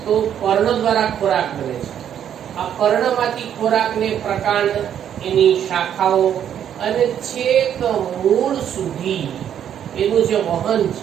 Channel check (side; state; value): left; quieter; 9.5 dB